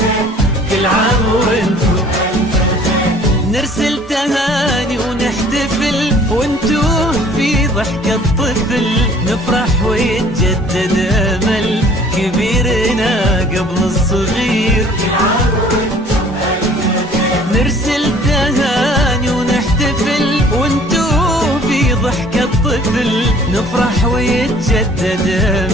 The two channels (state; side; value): normal; both; correlation 0.53